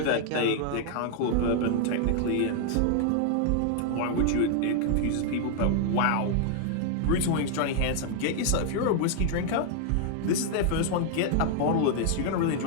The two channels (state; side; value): different; both; correlation 0.00